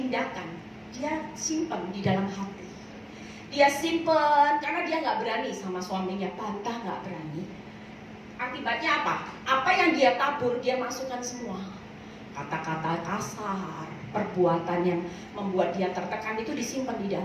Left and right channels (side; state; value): both; identical; correlation 1.00